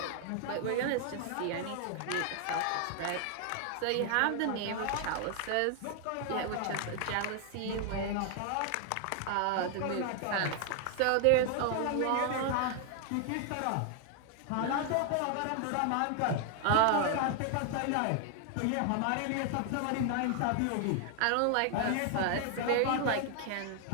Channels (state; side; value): different; both; correlation 0.00